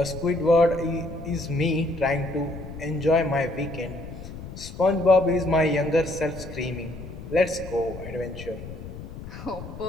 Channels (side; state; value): left; noise; rumble, 12 dB below the sound